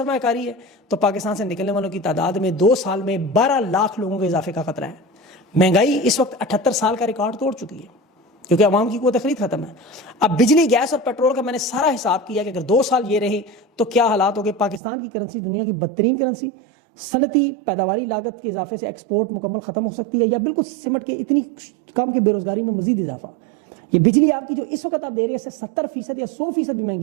है तो पाकिस्तान से निकलने वालों की तादाद में 2 साल में 12 लाख लोगों के इजाफे का खतरा है। महंगाई इस वक्त 78 साल का रिकॉर्ड तोड़ चुकी है क्योंकि अवाम की क़ुव्वत ख़रीद खत्म है। अब बिजली, गैस और पेट्रोल का मैंने सारा हिसाब किया कि अगर 2 साल ये रहे तो क्या हालात हो गए। पाकिस्तान की करेंसी दुनिया की बदतरीन करेंसी, सनती पैदावारी लागत के इजाफे से एक्सपोर्ट मुकम्मल ख़त्म हो सकती है या बिल्कुल सिमट के इतनी कम की बेरोज़गारी में मजीद इजाफा। ये बिजली आपकी जो इस वक्त आप दे रहे हैं इससे 70% या 100% भी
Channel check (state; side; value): drops out; left; at 14.8 s